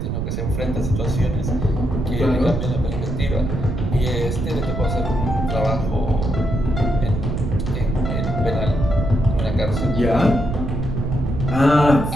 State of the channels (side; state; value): right; noise; rumble, 2 dB below the sound